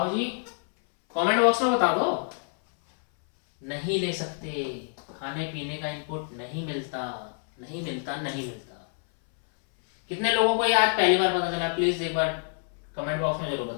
जी, कमेंट बॉक्स में बता दो। नहीं ले सकते, खाने पीने का इनपुट नहीं मिलता। कितने लोगों को ये आज पहली बार पता चला, प्लीज एक बार कमेंट बॉक्स में जरूर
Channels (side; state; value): right; silent; 60 dB below the other